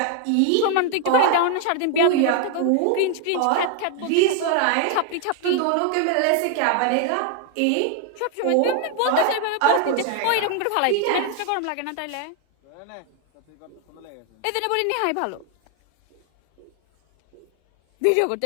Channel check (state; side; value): different; both; correlation 0.00